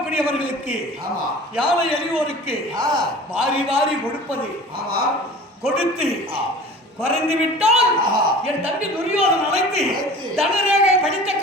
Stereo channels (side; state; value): both; normal; correlation 0.41